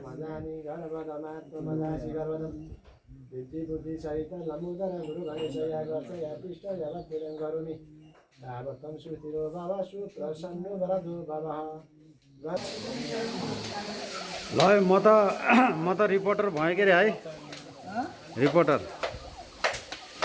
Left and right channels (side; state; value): both; identical; correlation 1.00